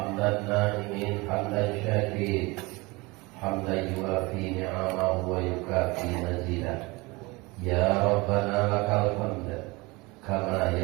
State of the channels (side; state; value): left; quieter; 24.2 dB